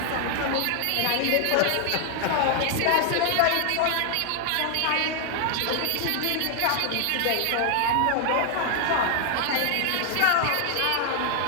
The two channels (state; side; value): different; both; correlation 0.00